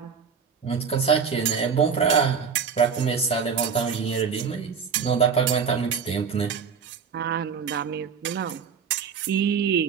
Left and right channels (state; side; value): quieter; left; 6.4 dB